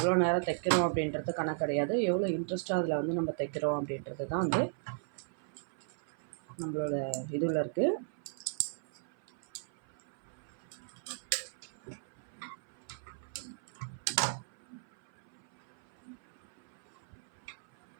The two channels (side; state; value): left; silent; 54 dB below the other